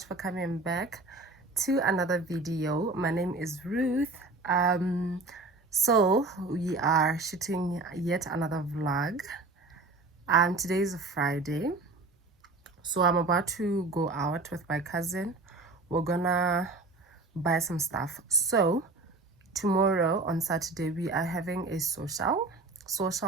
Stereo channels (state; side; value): quieter; left; 3.4 dB